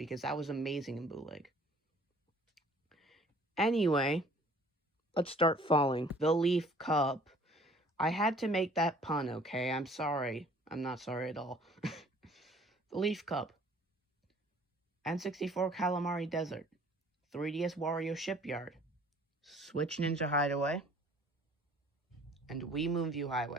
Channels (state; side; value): normal; both; correlation 0.54